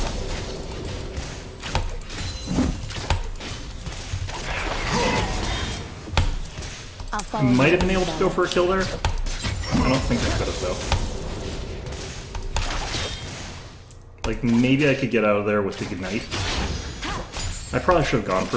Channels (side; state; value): both; identical; correlation 1.00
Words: Might have been able to go for a kill there. I don't think I could have though. Like maybe I could get out of there with the Ignite. I probably should have gone